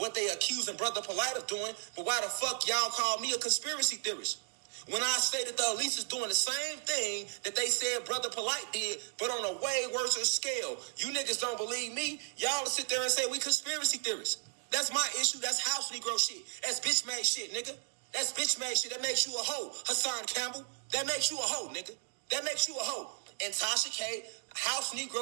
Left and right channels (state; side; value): silent; left; 55 dB below the other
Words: they accusing Bro.Polight of doing, but why the fuck y'all call me a conspiracy theorist? When I say that the elites is doing the same thing that they said Bro.Polight did, but on a way worse scale. You niggas don't believe me. Y'all will sit there and say we conspiracy theorists. That's my issue. That's house Negro shit. That's bitch made shit, nigga. That's bitch made shit. That makes you a hoe, Hassan Campbell. That makes you a hoe, nigga. That makes you a hoe. And Tasha K, house